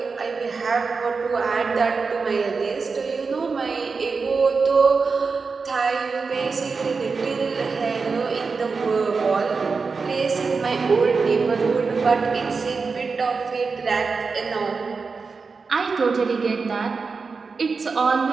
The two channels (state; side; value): quieter; left; 4.7 dB